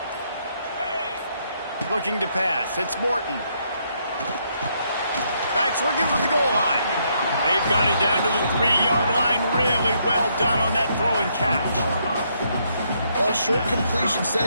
Looking to pass. It's Morton. Backs looking for the goal line. They've got it down to the 3-yard line. Really well done on that throw and catch. Well, short completion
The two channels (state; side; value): inverted; both; correlation -0.74